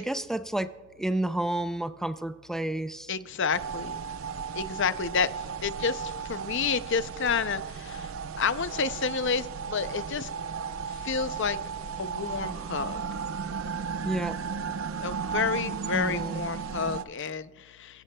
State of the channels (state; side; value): noise; left; hum, 30 dB below the sound